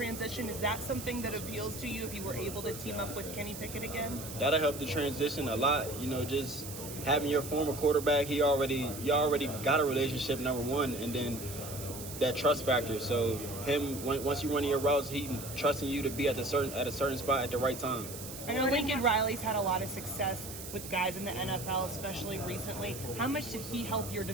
Is that something that appeals to you if you were able to team up with Kenny Pickett again? That'll help the transition a lot. Just having your former quarterback, you already got a relationship, number one, and then that trust factor. So once you run your routes, he trusting you to be at a certain spot at the right time. I know Lincoln Riley's had a lot of success with guys in the NFL, especially recently. How much did he help your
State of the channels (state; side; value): noise; right; hiss, 11 dB below the sound